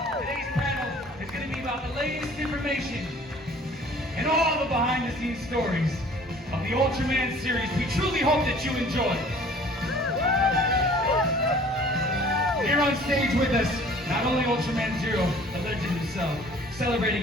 Today's panel is going to be about the latest information and all the behind-the-scenes stories of the Ultraman series. We truly hope that you enjoy. Here on stage with us, not only Ultraman Zero, the legend himself, celebrating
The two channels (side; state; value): both; normal; correlation 0.51